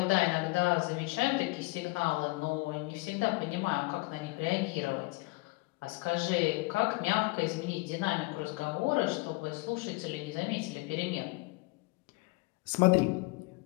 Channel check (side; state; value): right; quieter; 24.4 dB